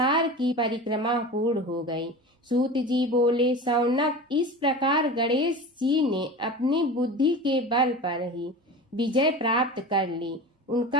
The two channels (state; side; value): normal; both; correlation 0.32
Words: की परिक्रमा पूर्ण हो गई। सूत जी बोले, शौनक, इस प्रकार गणेश जी ने अपनी बुद्धि के बल पर ही विजय प्राप्त कर ली।